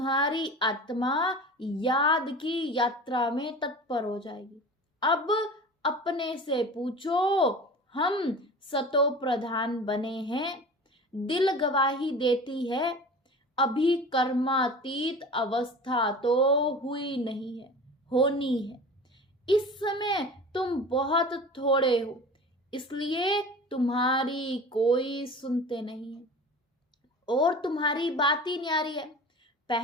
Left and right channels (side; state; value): both; normal; correlation 0.37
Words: आत्मा याद की यात्रा में तत्पर हो जाएगी। अब अपने से पूछो, हम सतो प्रधान बने हैं। दिल गवाही देती है, अभी कर्मातीत अवस्था तो हुई नहीं है, होनी है। इस समय तुम बहुत थोड़े हो, इसलिए तुम्हारी कोई सुनते नहीं है, और तुम्हारी बात ही न्यारी है।